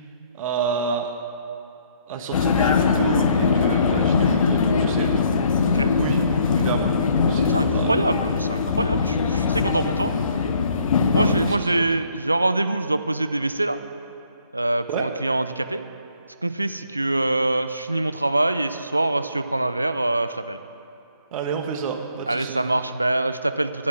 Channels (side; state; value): both; inverted; correlation -0.66